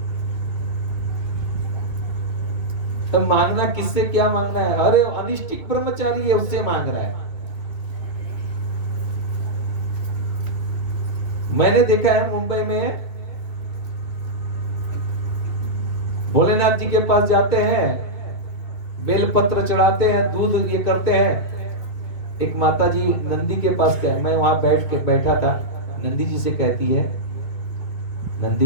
तो मांगना किससे क्या मांगना है? अरे अनिष्टिक ब्रह्मचारी है, उससे मांग रहा है। मैंने देखा है मुंबई में, भोलेनाथ जी के पास जाते हैं, बेलपत्र चढ़ाते हैं, दूध ये करते हैं। एक माता जी नंदी के पास गए, मैं वहां बैठा था, नंदी जी से कहती है,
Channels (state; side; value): late; right; 2.6 ms